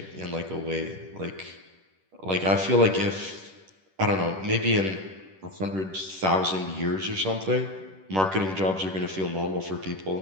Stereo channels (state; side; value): late; left; 10 ms